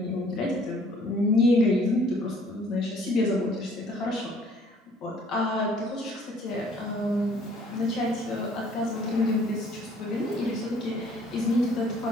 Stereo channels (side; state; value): both; normal; correlation 0.58